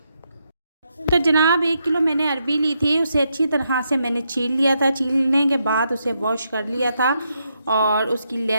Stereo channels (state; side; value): inverted; both; correlation -0.81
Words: तो जनाब, 1 किलो मैंने अरवी ली थी, उसे अच्छी तरह से मैंने छील लिया था। छीलने के बाद उसे वॉश कर लिया था और उसकी